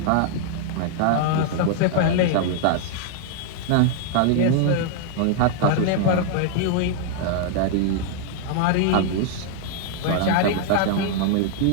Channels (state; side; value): different; both; correlation 0.00